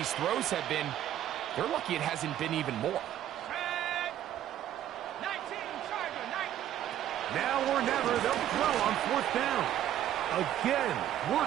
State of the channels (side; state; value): left; quieter; 11.8 dB